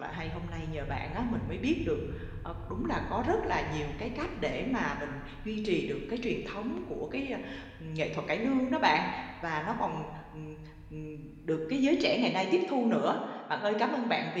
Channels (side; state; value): both; identical; correlation 1.00